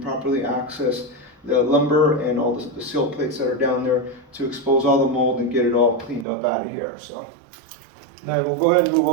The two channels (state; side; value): drops out; left; at 6.2 s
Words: access the lumber and all the seal plates that are down there to expose all the mold and get it all cleaned up out of here. So now we'll go ahead and move